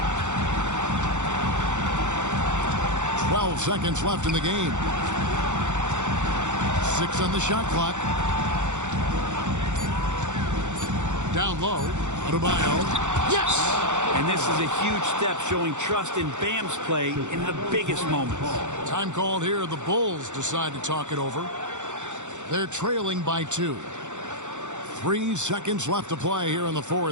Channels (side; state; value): left; late; 0.85 ms